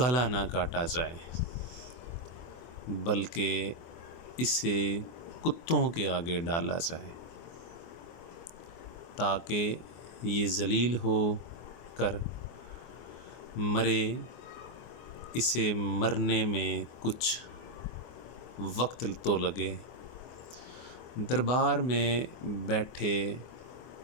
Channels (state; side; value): late; right; 24 ms